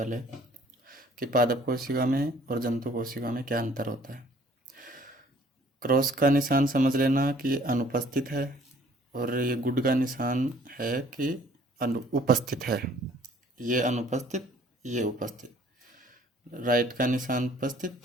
कि पादप कोशिका में और जंतु कोशिका में क्या अंतर होता है। क्रॉस का निशान समझ लेना कि अनुपस्थित है, और ये गुड का निशान है कि उपस्थित है। ये अनुपस्थित, ये उपस्थित। राइट का निशान उपस्थित,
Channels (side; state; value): both; normal; correlation 0.57